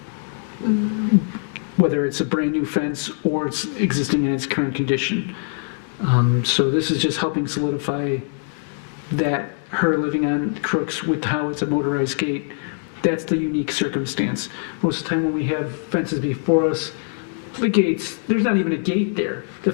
whether it's a brand new fence or it's existing in its current condition. So this is just helping solidify that her living on Crooks with how it's a motorized gate, that's the unique circumstance. Most of the time when we have fences before us, the gates, there's not even a gate there. The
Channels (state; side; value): silent; right; 64 dB below the other